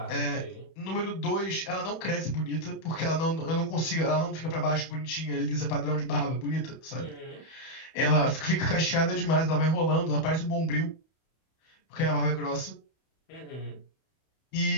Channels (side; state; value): right; late; 31 ms